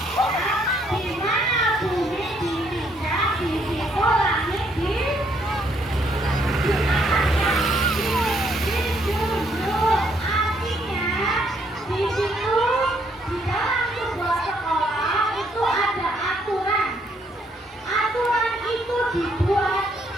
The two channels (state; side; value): normal; both; correlation 0.70